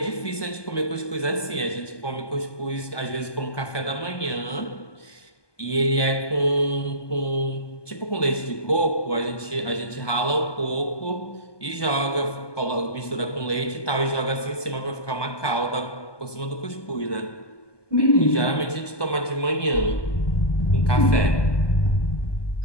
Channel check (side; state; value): right; late; 1.2 ms